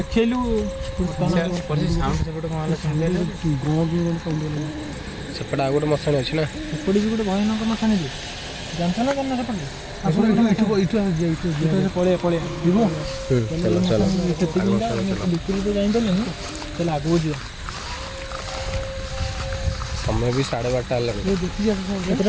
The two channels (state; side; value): identical; both; correlation 1.00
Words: ସେପଟେ ଆଉ ଗୋଟେ ମଶାଣି ଅଛି ନା ସେପଟେ ବି ଗୋଟେ ଭୟାନକ ମଶାଣି ଯେ ଜାଣିଛ ନା ଜାଣିନା ସେପଟେ ପଳେଇବା ଯିବୁ ଭିତରକୁ ତ ଯାଇପାରିଲେନି ତାହେଲେ ଆଗକୁ ଯିବା ସମୟ ବି 12:30 ହେଲାଣି